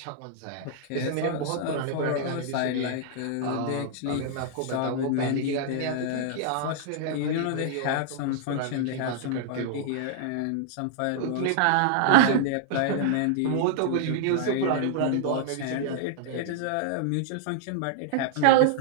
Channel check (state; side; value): different; both; correlation -0.01